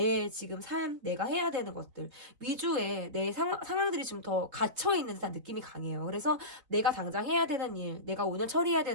지금 삶, 내가 해야 되는 것들 위주의 내 상황들이 좀 더 갇혀있는 듯한 느낌이 강해요. 그래서 내가 당장 해야 되는 일, 내가 오늘 처리해야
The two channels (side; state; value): left; late; 4.0 ms